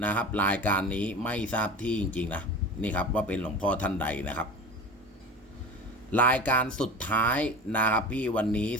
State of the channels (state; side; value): normal; both; correlation 0.34